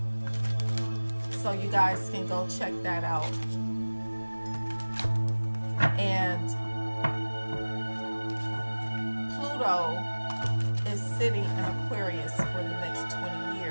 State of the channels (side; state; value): both; inverted; correlation -1.00